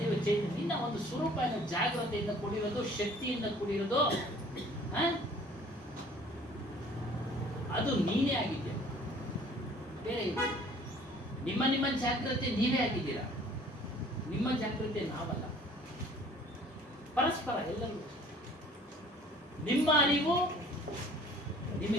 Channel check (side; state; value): both; normal; correlation 0.53